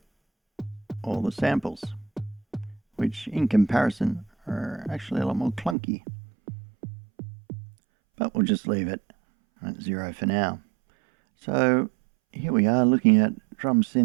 all the samples, which in comparison are actually a lot more clunky. But we'll just leave it at 0 for now. So here we are looking at drum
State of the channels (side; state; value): left; drops out; at 5.8 s